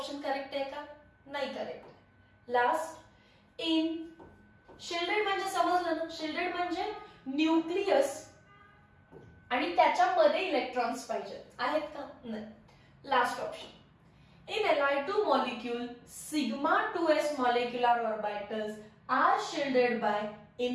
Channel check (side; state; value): both; identical; correlation 1.00